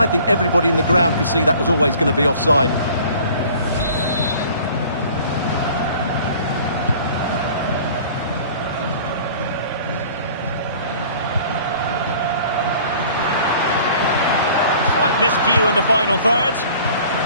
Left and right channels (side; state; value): both; inverted; correlation -0.49